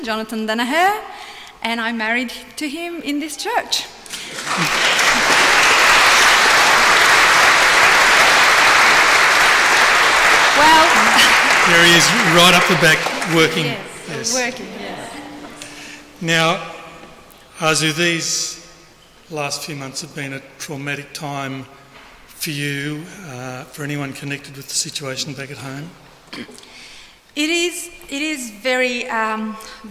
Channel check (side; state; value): both; identical; correlation 1.00